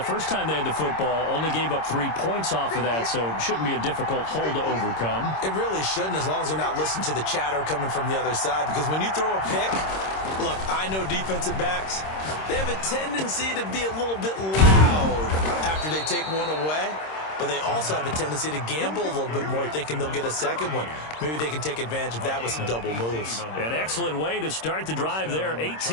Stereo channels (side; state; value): right; late; 26 ms